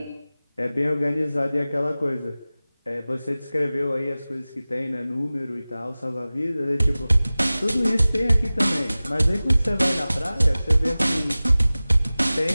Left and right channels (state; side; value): inverted; both; correlation -0.98